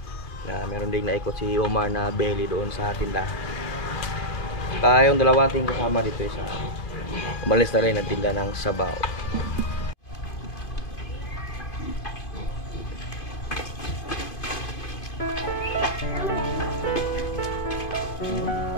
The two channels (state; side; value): late; right; 2.5 ms